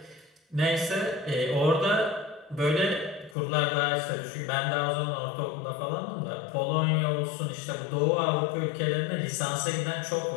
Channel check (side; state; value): right; drops out; at 3.4 s